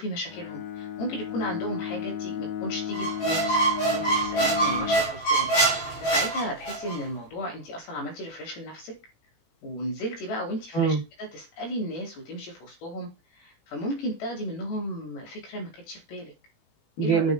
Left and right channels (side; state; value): right; late; 18 ms